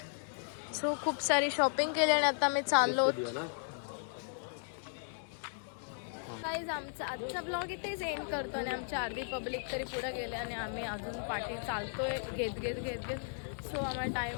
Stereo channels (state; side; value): silent; right; digital silence